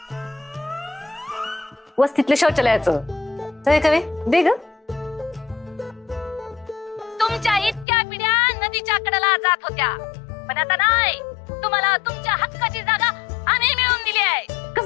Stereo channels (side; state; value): right; drops out; at 7.9 s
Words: वस्तीतल्या शौचालयाचं कवे दे ग. तुमच्या इतक्या पिढ्या नदीच्या कडेला जात होत्या, पण आता नाही. तुम्हाला तुमच्या हक्काची जागा आम्ही मिळवून दिली आहे.